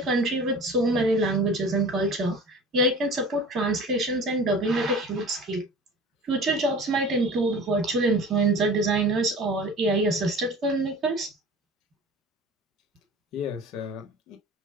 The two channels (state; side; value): normal; both; correlation 0.40